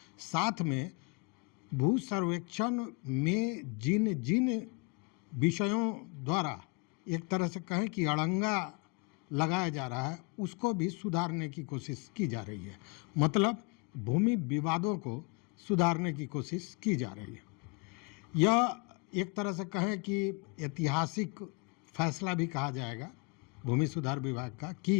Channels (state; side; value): quieter; right; 30.5 dB